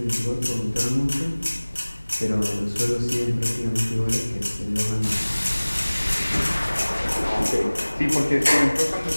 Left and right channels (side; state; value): both; inverted; correlation -1.00